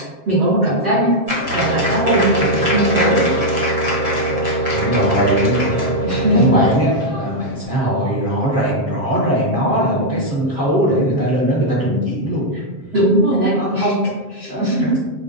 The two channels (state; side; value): late; left; 7.5 ms